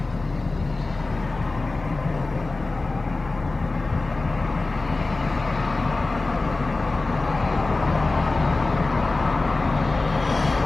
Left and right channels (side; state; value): right; quieter; 3.3 dB